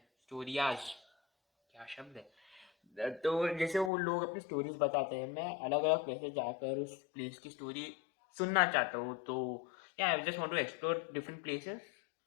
स्टोरियाज क्या शब्द है, तो जैसे वो लोग अपनी स्टोरीज बताते हैं, मैं अलग अलग प्लेसेस जाकर उस प्लेस की स्टोरी सुनना चाहता हूँ। तो yeah I just want to explore different places.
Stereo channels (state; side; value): drops out; right; at 3.9 s